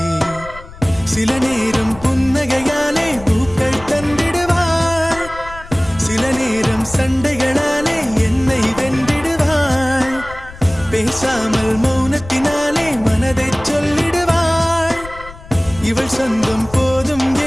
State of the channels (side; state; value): left; noise; rumble, 17 dB below the sound